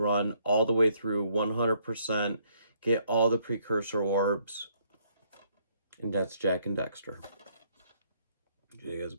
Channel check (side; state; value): both; inverted; correlation -0.68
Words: all the way through 100%, get all the precursor orbs. And that's Jak and Daxter. You guys